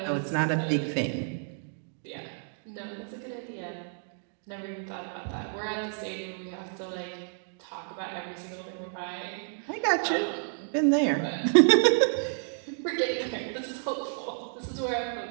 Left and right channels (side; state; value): left; silent; digital silence